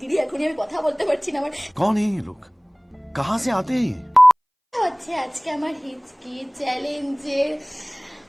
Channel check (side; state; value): both; identical; correlation 1.00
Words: এখনই আমি কথা বলতে পারছি না। আমার कौन है ये लोग, कहाँ से आते हैं ये? হচ্ছে আজকে আমার হিচকি চ্যালেঞ্জের